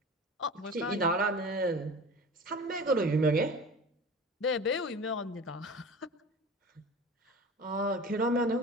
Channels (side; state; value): both; normal; correlation 0.36